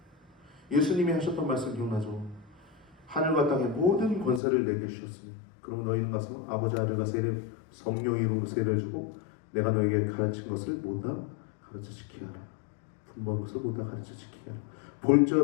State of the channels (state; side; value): drops out; right; at 4.4 s